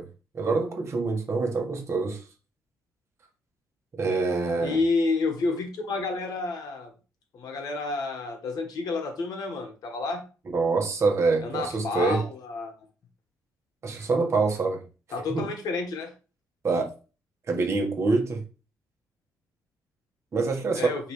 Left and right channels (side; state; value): both; normal; correlation 0.73